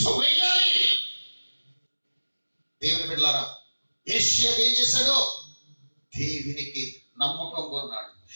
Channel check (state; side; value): inverted; both; correlation -1.00